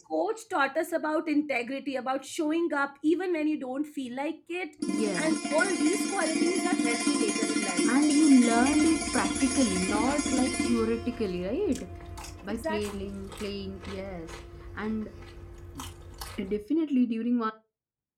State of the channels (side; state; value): both; identical; correlation 1.00